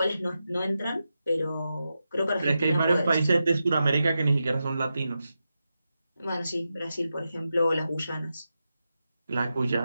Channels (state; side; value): inverted; both; correlation -0.89